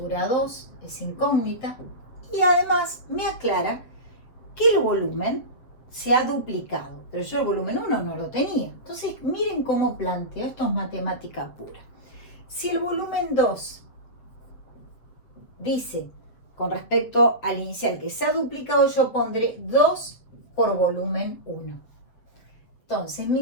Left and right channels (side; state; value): right; late; 8.0 ms